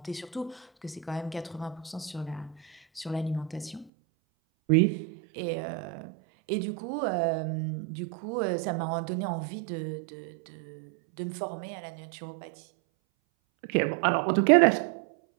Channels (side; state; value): left; drops out; at 3.9 s